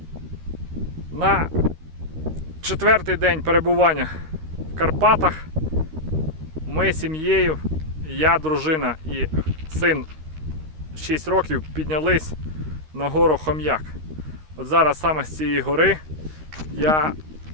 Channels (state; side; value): late; left; 13 ms